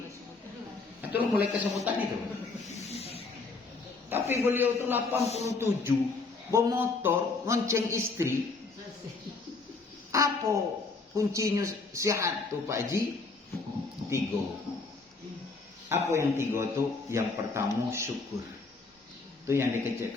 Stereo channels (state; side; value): quieter; right; 4.0 dB